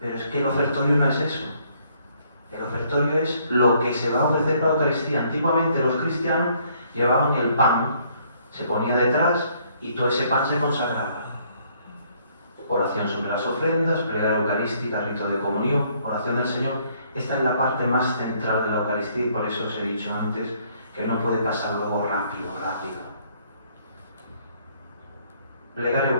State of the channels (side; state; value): both; inverted; correlation -0.66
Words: es que el ofertorio no es eso. El ofertorio es lo que se va a ofrecer para la Eucaristía. Antiguamente los cristianos llevaban el pan, se ponía detrás y todo ese pan se consagraba. Oración sobre las ofrendas, plegaria eucarística, rito de comunión, oración del Señor. Esta es la parte más central de la Eucaristía y por eso os he dicho antes que no puede pasar luego rápido. Plegaria